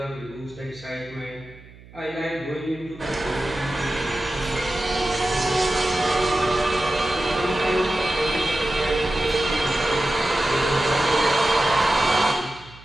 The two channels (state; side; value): noise; right; hum, 21 dB below the sound